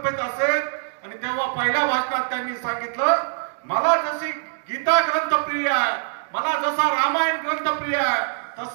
असेल. आणि तेव्हा पहिल्या भाषणात त्यांनी सांगितलं, मला जशी गीता ग्रंथ प्रिय आहे, मला जसा रामायण ग्रंथ प्रिय आहे,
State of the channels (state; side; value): silent; left; digital silence